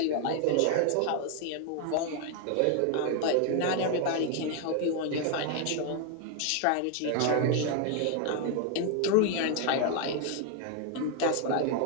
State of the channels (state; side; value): different; both; correlation 0.00